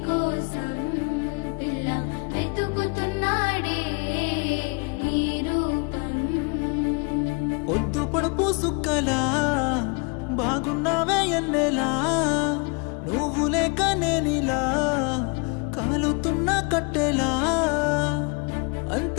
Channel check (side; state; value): right; quieter; 32.3 dB